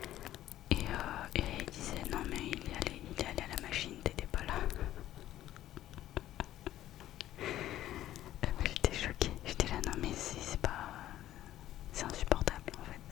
Et il disait, non mais il est allé à la machine, t'étais pas là. J'étais choquée, j'étais là, non mais c'est pas... C'est insupportable en fait,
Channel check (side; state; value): right; quieter; 13.3 dB